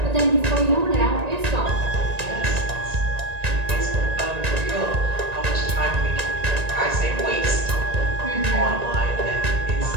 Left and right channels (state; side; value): late; left; 1.9 ms